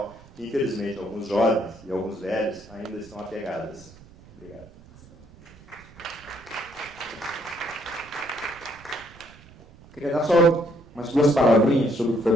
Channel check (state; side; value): noise; right; rumble, 23 dB below the sound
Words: que infelizmente alguns jovens e alguns velhos ainda estão apegadas. Obrigado. Queria dar só umas duas palavrinhas sobre o que